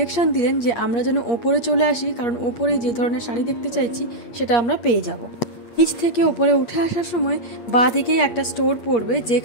দিলেন যে আমরা যেন ওপরে চলে আসি, কারণ ওপরে যে ধরনের শাড়ি দেখতে চাইছি সেটা আমরা পেয়ে যাব। নিচ থেকে ওপরে উঠে আসার সময় বাঁ দিকেই একটা স্টোর পড়বে,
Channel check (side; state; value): right; late; 8.6 ms